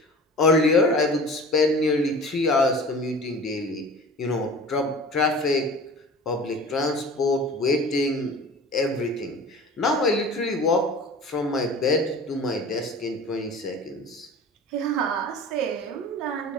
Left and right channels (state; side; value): normal; both; correlation 0.39